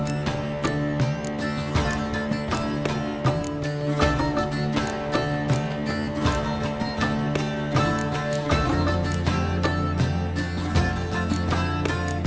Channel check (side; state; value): both; identical; correlation 1.00